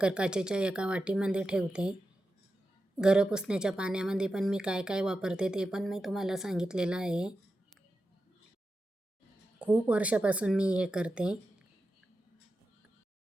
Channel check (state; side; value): normal; both; correlation 0.91